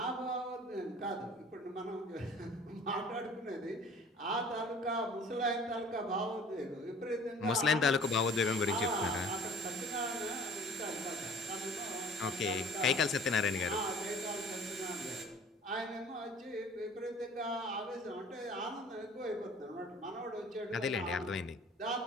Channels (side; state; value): both; normal; correlation 0.49